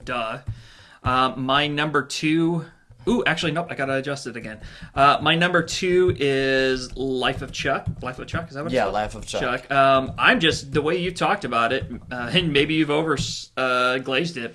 My number 2. Ooh, actually, nope. I gotta adjust it again. My number 2 is Life of Chuck. Life of Chuck, is that what it's called? Yeah, Life of Chuck. I'm just the way you talked about it, and maybe you've glazed it,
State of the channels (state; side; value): identical; both; correlation 1.00